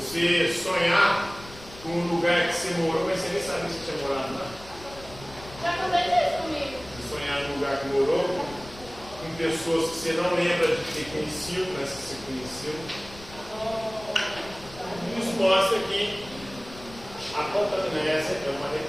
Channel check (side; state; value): left; noise; rumble, 18 dB below the sound